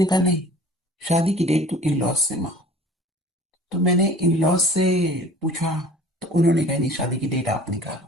कहा नहीं, शादी की डेट तो इन लॉज से मांगो। तो मैंने इन लॉज से पूछा, तो उन्होंने कहा नहीं, शादी की डेट आप निकालो।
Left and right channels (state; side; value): normal; both; correlation 0.46